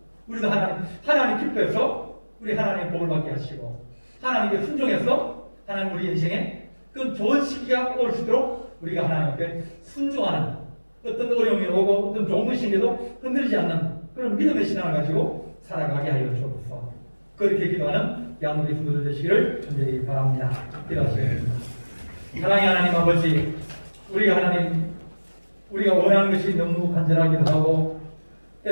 우리도 하나님 기뻐해서 우리 하나님의 복을 받게 하시고 하나님께 순종해서 하나님 우리 인생에 그 좋은 시기가 올 수 있도록 우리가 하나님 앞에 순종하는 어떤 어려움이 오고 어떤 좋은 것이 생겨도 흔들리지 않는 그런 믿음의 신앙을 가지고 살아가게 하여 주옵소서. 그렇게 기도하는 양우리 성도들 되시기를 간절히 바랍니다. 기도하시겠습니다. 사랑의 하나님 아버지, 우리가 원하는 것이 너무 간절하기도 하고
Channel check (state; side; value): inverted; both; correlation -1.00